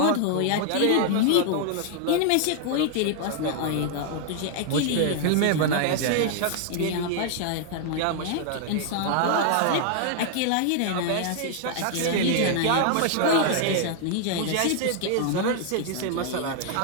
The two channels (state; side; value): different; both; correlation 0.00